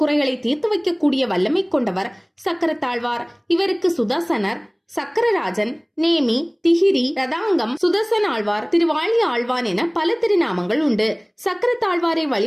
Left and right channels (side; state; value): both; identical; correlation 1.00